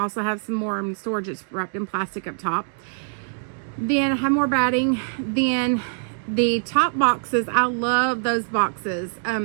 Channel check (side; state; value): left; silent; digital silence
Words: have some more in storage. It's wrapped in plastic up top. Then I have more batting. Then the top boxes, I love those boxes.